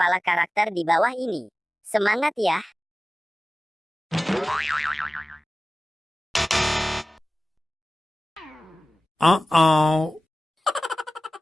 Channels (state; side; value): normal; both; correlation 0.97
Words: karakter di bawah ini. Semangat ya! Uh-oh.